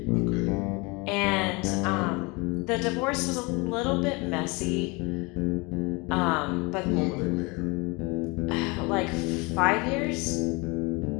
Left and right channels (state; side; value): quieter; right; 27.4 dB